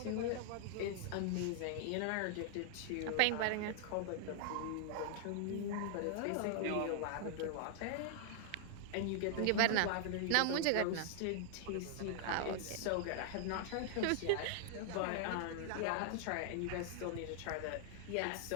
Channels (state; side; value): different; both; correlation 0.00